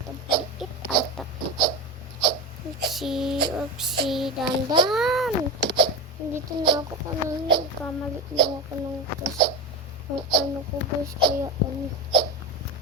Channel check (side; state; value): both; normal; correlation 0.19